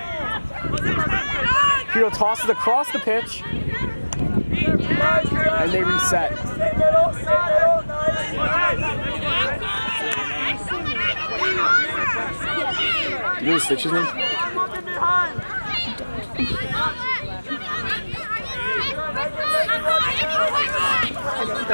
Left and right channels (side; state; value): both; inverted; correlation -1.00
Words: Pirro tosses across the pitch, and they reset. Do you know the snitch's name? I don't